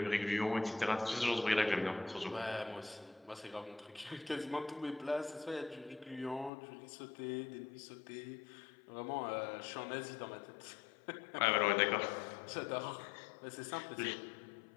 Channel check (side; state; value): right; drops out; at 6.5 s